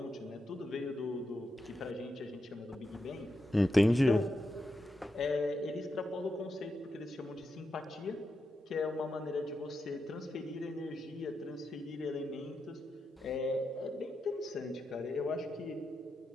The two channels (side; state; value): both; normal; correlation 0.87